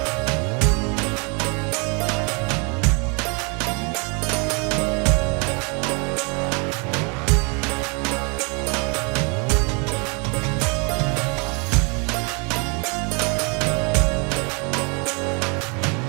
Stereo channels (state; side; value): quieter; left; 33.3 dB